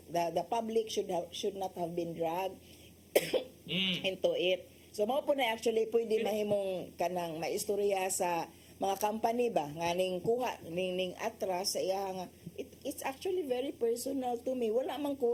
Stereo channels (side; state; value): both; identical; correlation 1.00